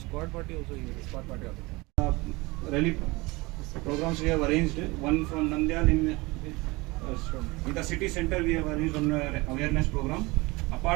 party also here. Squad party also. Rally programs we have arranged. One from Nandyal in the city center we have arranged one awareness program.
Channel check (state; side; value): quieter; left; 23.4 dB